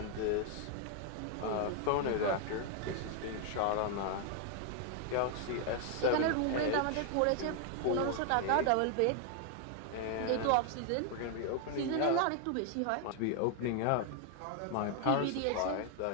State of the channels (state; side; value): different; both; correlation 0.00